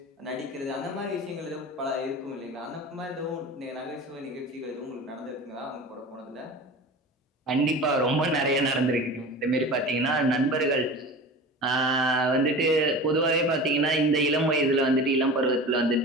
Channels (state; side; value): normal; both; correlation 0.34